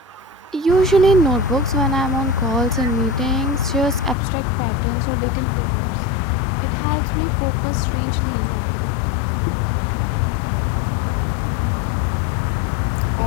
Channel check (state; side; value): drops out; right; at 4.2 s